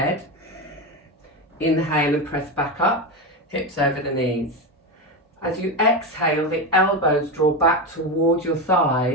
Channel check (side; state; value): both; normal; correlation 0.16